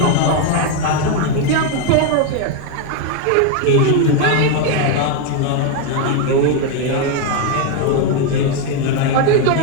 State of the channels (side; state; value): both; different; correlation 0.01